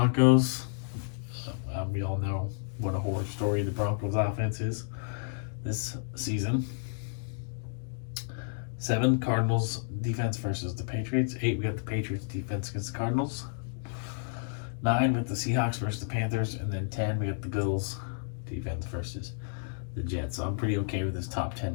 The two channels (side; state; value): right; silent; digital silence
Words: We all know what a horror story the Broncos offense is this season. 7, Cardinals defense versus the Patriots. 8, we got the Patriots defense against the Cardinals. 9, we got the Seahawks versus the Panthers. And then 10, we got the Bills defense versus the Jets. So I'm pretty okay with this top